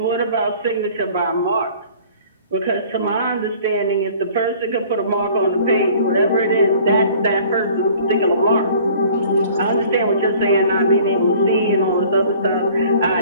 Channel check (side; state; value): both; inverted; correlation -0.51